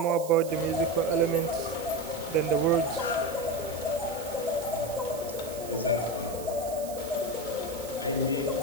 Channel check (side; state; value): right; noise; hiss, 14 dB below the sound